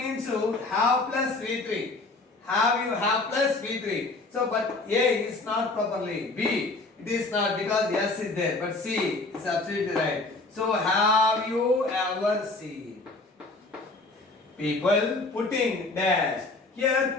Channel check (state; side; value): quieter; right; 3.3 dB